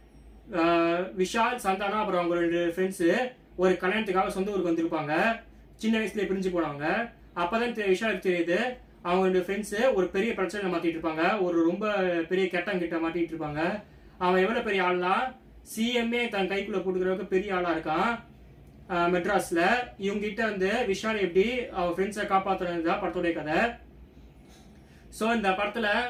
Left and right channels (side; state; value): both; identical; correlation 1.00